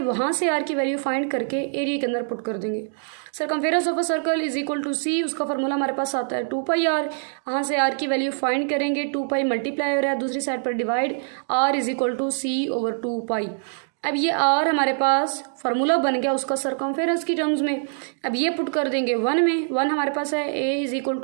से आर की वैल्यू फाइंड करके एरिया के अंदर पुट कर देंगे। Circumference of a circle is equal to c, उसका फार्मूला हमारे पास आता है 2 पाई आर। यहाँ से आर की वैल्यू फाइंड करेंगे, 2 पाई मल्टीप्लाई हो रहा है, दूसरी साइड पर divide, R is equal to C over 2 pi. अब ये आर हमारे पास फार्मूला बन गया उसका सर्कमफेरेंस की टर्म्स में। अब ये पुट कर देंगे 1 में। 1 हमारे पास है a is equal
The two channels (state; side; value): silent; left; 63 dB below the other